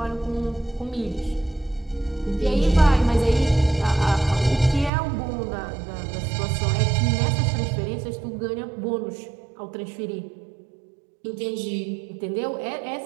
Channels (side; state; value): left; drops out; at 4.9 s